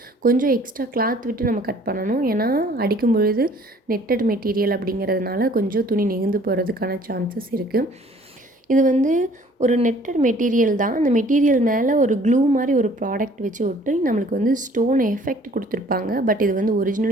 கொஞ்சம் எக்ஸ்ட்ரா கிளாத் விட்டு நம்ம கட் பண்ணணும். ஏன்னா அடிக்கும் பொழுது நெட்டட் மெட்டீரியல் அப்படிங்கிறதுனால கொஞ்சம் துணி நெகிழ்ந்து போகிறதுக்கான சான்சஸ் இருக்குது. இது வந்து ஒரு நெட்டட் மெட்டீரியல் தான். அந்த மெட்டீரியல் மேலே ஒரு க்ளூ மாதிரி ஒரு ப்ராடக்ட் வச்சு ஒட்டி நம்மளுக்கு வந்து ஸ்டோன் எஃபெக்ட் கொடுத்துருப்பாங்க. பட் இது வந்து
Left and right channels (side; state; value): both; normal; correlation 0.55